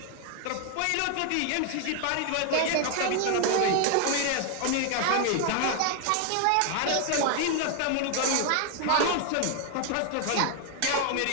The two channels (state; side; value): different; both; correlation 0.00